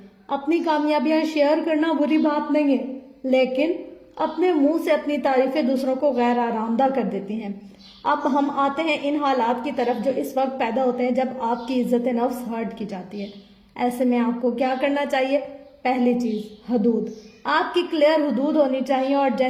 اپنی کامیابیاں شیئر کرنا بری بات نہیں ہے، لیکن اپنے منہ سے اپنی تعریفیں دوسروں کو غیر آرامدہ کر دیتی ہیں. اب ہم آتے ہیں ان حالات کی طرف جو اس وقت پیدا ہوتے ہیں جب آپ کی عزت نفس ہرٹ کی جاتی ہے. ایسے میں آپ کو کیا کرنا چاہیے؟ پہلی چیز، حدود. آپ کی کلیئر حدود ہونی چاہیے اور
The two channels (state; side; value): identical; both; correlation 1.00